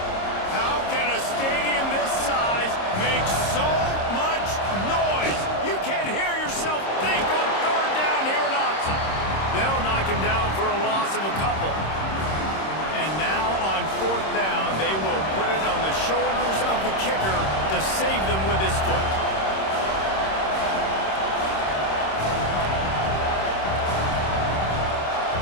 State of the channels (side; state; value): right; late; 26 ms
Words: How can a stadium this size make so much noise? You can't hear yourself think on 3rd down here in Autzen. They'll knock him down for a loss of a couple. And now on 4th down, they will put it on the shoulders of the kicker to save them with his foot.